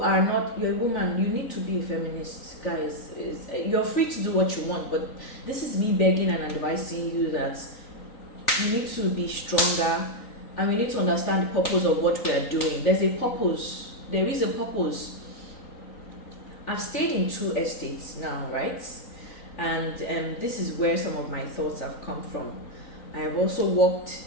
a woman, you need to be a feminist. Guys, you're free to do what you want, but this is me begging and advising you that you need to be stronger, and we need to understand the purpose of what we are doing. There's a purpose. There is a purpose. I've stayed in 2 estates now, right? And this is where some of my thoughts have come from. I have also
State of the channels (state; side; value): late; right; 3.9 ms